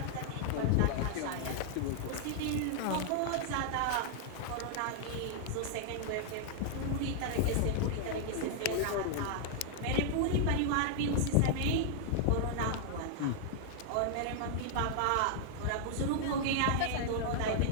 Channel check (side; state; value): both; different; correlation -0.01